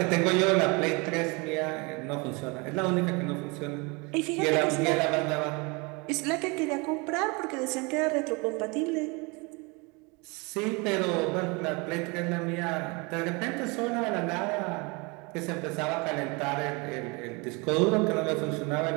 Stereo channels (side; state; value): left; quieter; 28.4 dB